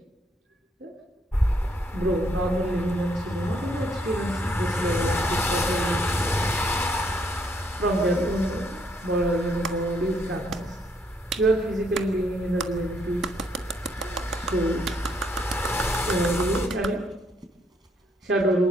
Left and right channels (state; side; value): normal; both; correlation 0.71